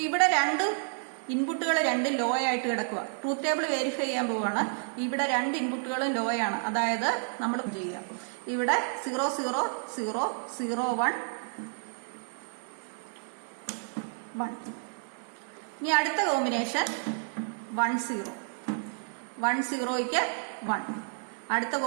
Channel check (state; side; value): silent; left; digital silence